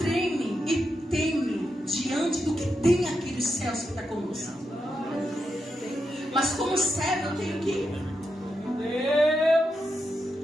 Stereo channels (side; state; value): both; normal; correlation 0.86